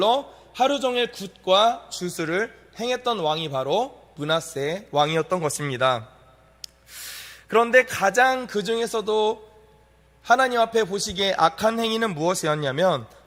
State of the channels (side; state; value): both; identical; correlation 1.00